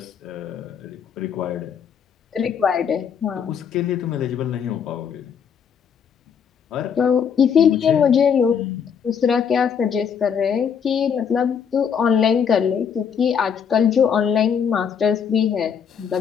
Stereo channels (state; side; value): quieter; right; 7.3 dB